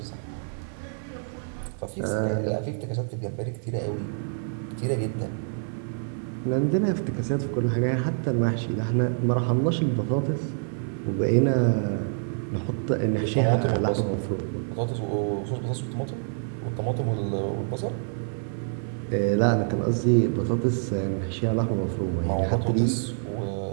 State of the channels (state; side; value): silent; left; 60 dB below the other